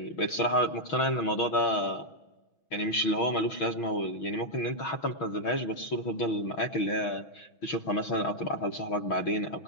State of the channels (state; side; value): late; right; 6.2 ms